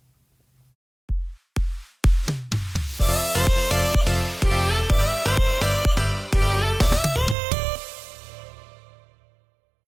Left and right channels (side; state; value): left; drops out; at 7.4 s